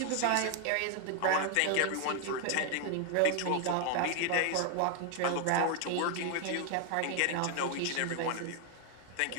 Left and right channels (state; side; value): different; both; correlation 0.00